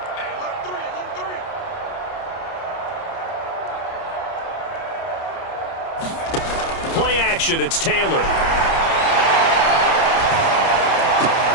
Play action, it's Taylor.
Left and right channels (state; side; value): late; right; 30 ms